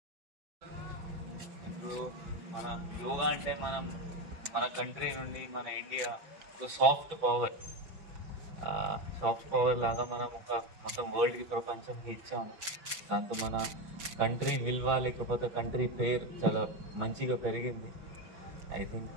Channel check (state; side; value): late; left; 6.0 ms